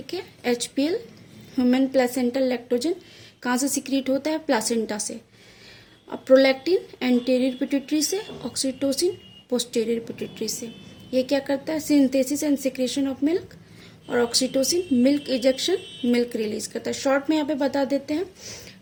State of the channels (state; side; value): identical; both; correlation 1.00